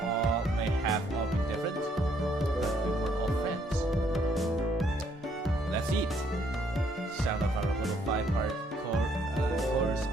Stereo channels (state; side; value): normal; both; correlation 0.68